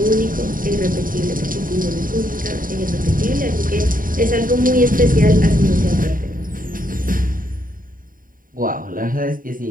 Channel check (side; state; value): left; late; 0.40 ms